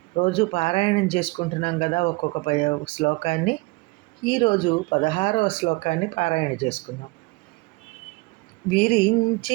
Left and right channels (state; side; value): quieter; left; 25.2 dB